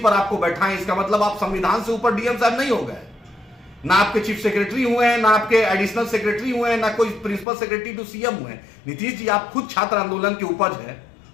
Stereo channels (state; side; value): drops out; right; at 7.5 s